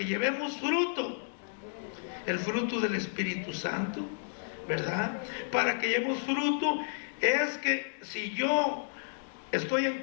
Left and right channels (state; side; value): silent; right; digital silence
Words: llevemos fruto. El fruto del Espíritu Santo, ¿verdad? Para que llevemos fruto. Es que si yo estoy